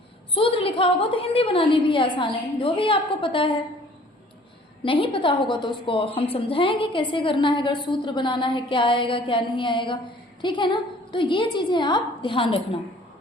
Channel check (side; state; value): both; normal; correlation 0.53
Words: सूत्र लिखा होगा तो हिंदी बनानी भी आसान है। जो भी आपको पता है, नहीं पता होगा तो उसको हम समझाएंगे कैसे करना है, अगर सूत्र बनाना है क्या आएगा क्या नहीं आएगा, ठीक है ना। तो ये चीजें आप ध्यान रखना।